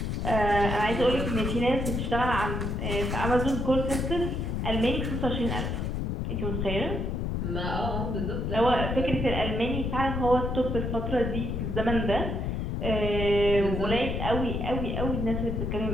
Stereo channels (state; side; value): noise; left; rumble, 1 dB below the sound